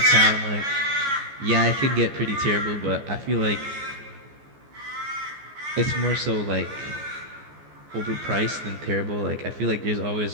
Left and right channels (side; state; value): left; late; 14 ms